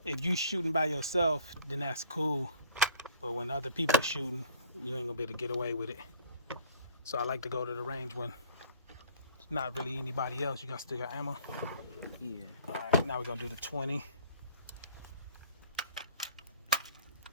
if you shooting by yourself, then that's cool. But when other people shooting, you ain't gonna be able to get away with it. So I like to go to the range when it's not really anybody else. You still got ammo? Yeah. All right, now we're gonna do the 20.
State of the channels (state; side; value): inverted; both; correlation -0.53